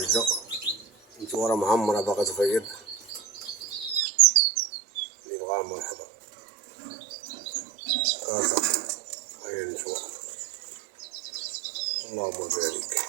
نتوما راه معمرة باغا تفيض، اللي بغاها مرحبا. كازا هاهي نتوما، اللهم بارك.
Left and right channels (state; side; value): drops out; left; at 4.0 s